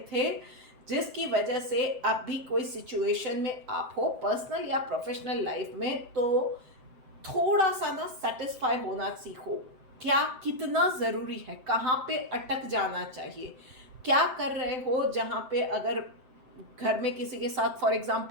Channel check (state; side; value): late; left; 7.7 ms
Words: थे, जिसकी वजह से अब भी कोई सिचुएशन में आप हो पर्सनल या प्रोफेशनल लाइफ में, तो थोड़ा सा ना सेटिस्फाई होना सीखो। क्या कितना ज़रूरी है, कहाँ पे अटक जाना चाहिए, क्या कर रहे हो जहाँ पे अगर घर में किसी के साथ फॉर